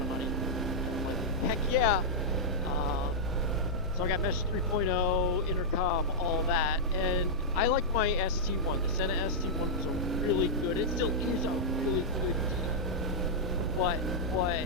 of money. And I'm like, heck yeah. So I got Mesh 3.0, intercom, all that, and I like my ST1. The Sena ST1 was a really good. It still is a really good deal. But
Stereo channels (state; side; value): normal; both; correlation -0.08